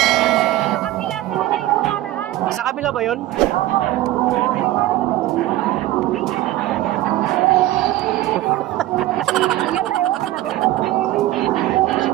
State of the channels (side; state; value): left; quieter; 15.6 dB